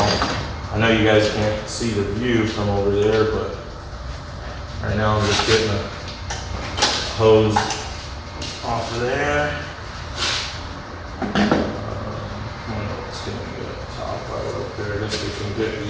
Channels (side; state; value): both; identical; correlation 1.00